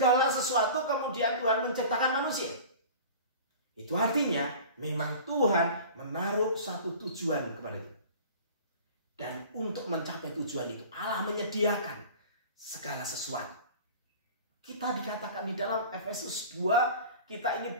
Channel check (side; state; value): both; inverted; correlation -0.41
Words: sesuatu, kemudian Tuhan menciptakan manusia. Itu artinya memang Tuhan menaruh satu tujuan kepada kita. Dan untuk mencapai tujuan itu Allah menyediakan segala sesuatu. Kita dikatakan di dalam Efesus 2, kita ini